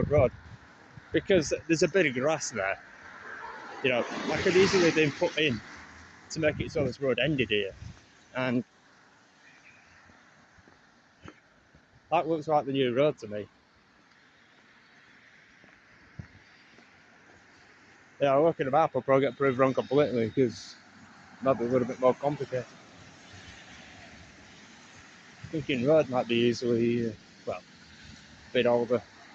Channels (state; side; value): identical; both; correlation 1.00